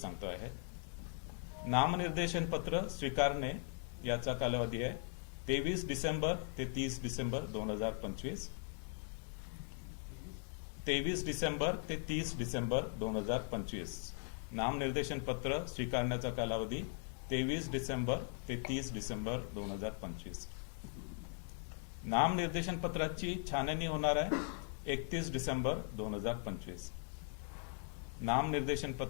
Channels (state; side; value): silent; right; 51 dB below the other